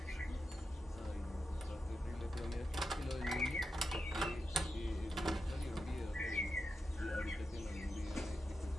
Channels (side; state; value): both; normal; correlation 0.88